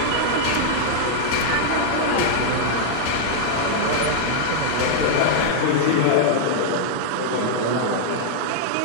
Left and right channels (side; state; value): both; different; correlation -0.01